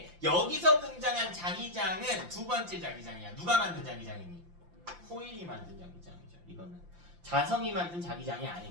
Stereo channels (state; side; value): late; left; 5.8 ms